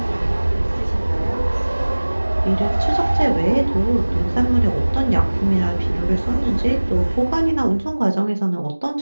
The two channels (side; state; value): both; inverted; correlation -1.00